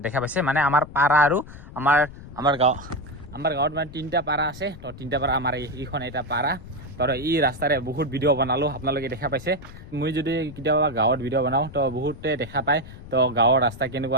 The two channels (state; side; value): noise; left; rumble, 16 dB below the sound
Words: দেখা পাইছে মানে আমাৰ পাৰা আৰু আমাৰ গাঁৱত মানে 3টা পাৰা আছে। তো 3টা পাৰা আমাৰ এইখন এটা পাৰা। তো এই ৰাস্তাৰে বহুত ভিডিঅ' বনালোঁ, আপোনালোকে দেখা পাইছে। মই যদি কেতিয়াবা গাঁৱত ভিডিঅ' বনাওঁ তো বহুতে দেখা পায়। তো গাঁৱৰ ৰাস্তা